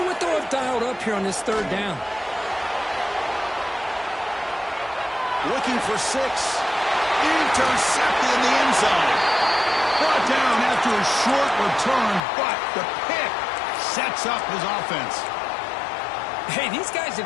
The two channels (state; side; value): drops out; right; at 12.2 s